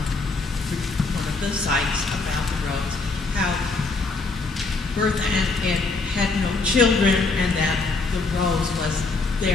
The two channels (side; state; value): right; quieter; 3.8 dB